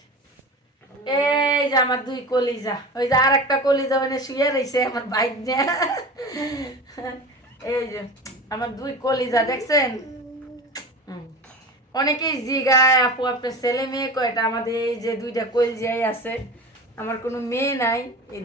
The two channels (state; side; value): normal; both; correlation 0.31